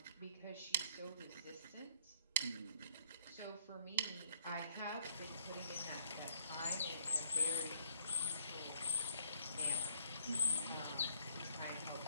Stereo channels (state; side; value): inverted; both; correlation -0.64